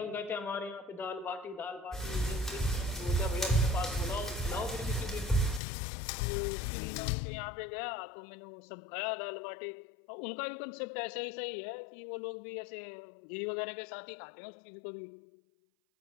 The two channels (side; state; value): right; drops out; at 5.6 s